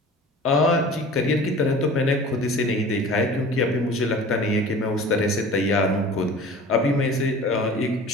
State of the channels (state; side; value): normal; both; correlation 0.42